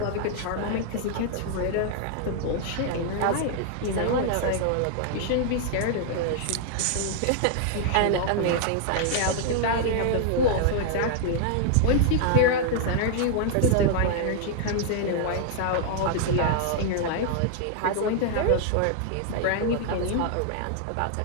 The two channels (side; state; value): both; different; correlation -0.01